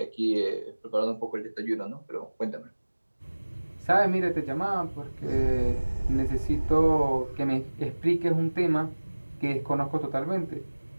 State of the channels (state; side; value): inverted; both; correlation -1.00